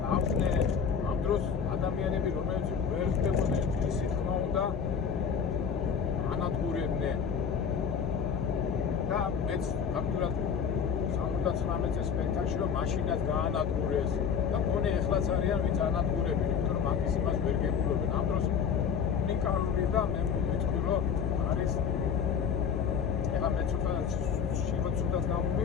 ამ დროს ადამიანები რომელიც ვერ ხდებოდნენ ისი თქმა უნდა ანადგურებდნენ. და მეც ფაქტურად 79 წელს სპექტაკლში რომ მაშინაც გაანადგურეს და მგონი ეხლაც არიან ვინც ანადგურებენ, იმიტომ რომ მაგის იმას ვერ გებულობენ. ამ დროს უნიკალური და მე ვიტყვი რომ არის ეხლა მე ცუდად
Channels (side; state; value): right; quieter; 6.8 dB